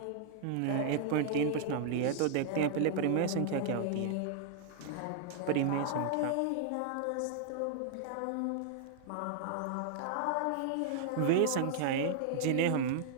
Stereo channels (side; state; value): both; different; correlation -0.01